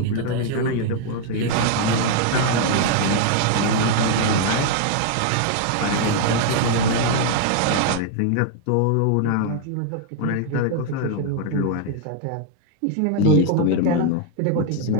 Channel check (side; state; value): both; different; correlation 0.00